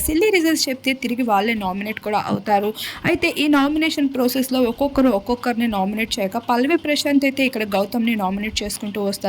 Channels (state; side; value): identical; both; correlation 1.00